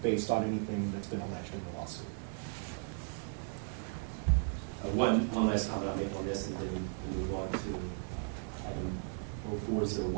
based on anything that's been alleged in the lawsuit. One last comment I'll make on this, and then we'll move on to item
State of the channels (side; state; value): left; silent; 54 dB below the other